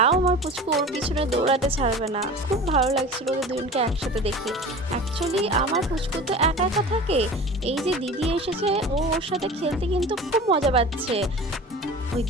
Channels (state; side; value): normal; both; correlation 0.37